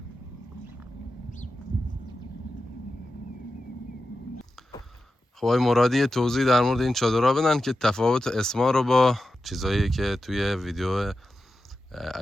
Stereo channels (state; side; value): normal; both; correlation 0.91